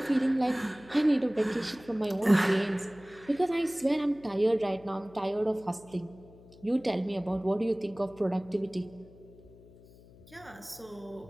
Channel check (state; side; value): noise; left; hum, 23 dB below the sound